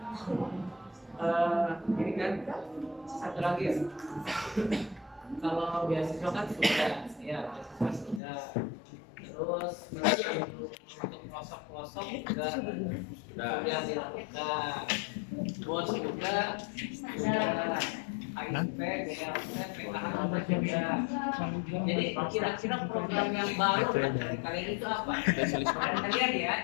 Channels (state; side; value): drops out; right; at 8.2 s